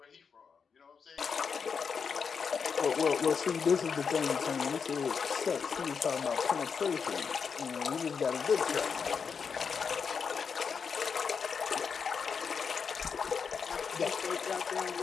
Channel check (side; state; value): right; quieter; 6.1 dB